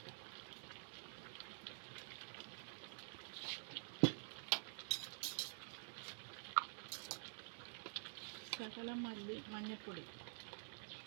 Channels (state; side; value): silent; left; digital silence